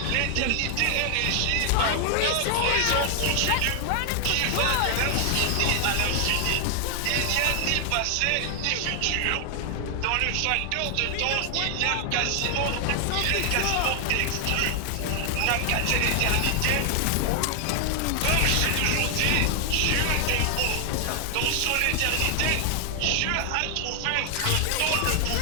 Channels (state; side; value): different; both; correlation 0.00